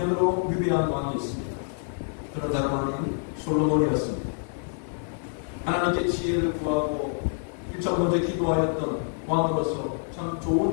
위배한 왕이 있습니다. 그런 다른 솔로몬이었습니다. 하나님께 지혜를 구하고 일정 먼저 기도하였던 왕으로서 참 좋은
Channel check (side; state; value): right; silent; digital silence